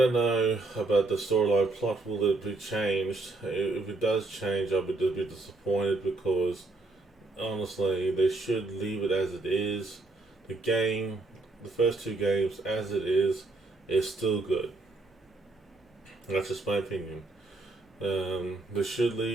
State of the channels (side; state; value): left; quieter; 3.3 dB